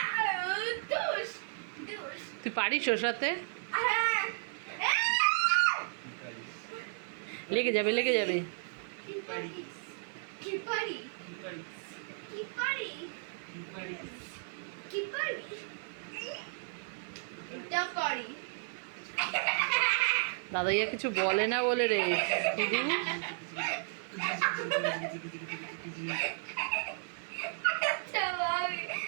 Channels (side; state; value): left; silent; 55 dB below the other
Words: তুই পারিস ওর সাথে? লেগে যাবে, লেগে যাবে। দাদাইয়া কিছু বলে না বলে রে শুধু